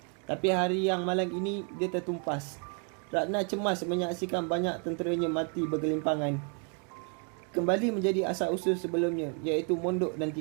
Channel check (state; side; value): quieter; left; 39.1 dB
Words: Tapi hari yang malang ini dia tertumpas. Ratna cemas menyaksikan banyak tenteranya mati bergelimpangan. Kembali menjadi asal-usul sebelumnya, iaitu mondok dan